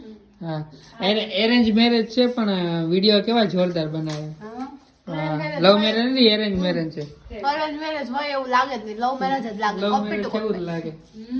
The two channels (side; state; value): both; identical; correlation 1.00